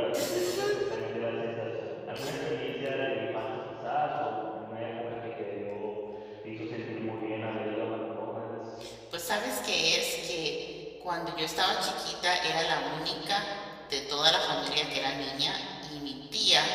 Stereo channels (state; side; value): identical; both; correlation 1.00